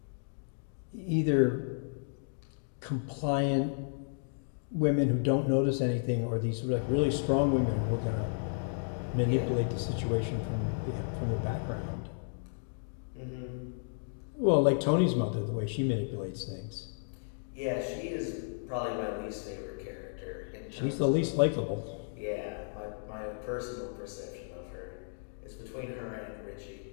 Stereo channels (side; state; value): right; silent; digital silence